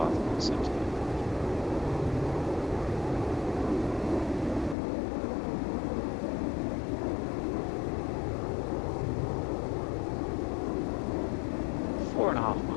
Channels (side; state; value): right; drops out; at 4.8 s